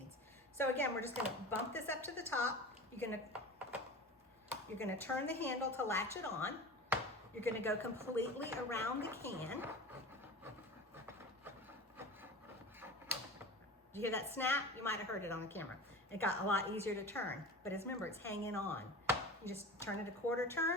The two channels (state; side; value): normal; both; correlation 0.34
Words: So again, we're just gonna bump this up to the top. You're gonna turn the handle to latch it on. You're gonna go completely around the can. Did you hear that snap? You might have heard it on the camera. It got a lot easier to turn, but remember, it's hanging on. You just turn it a quarter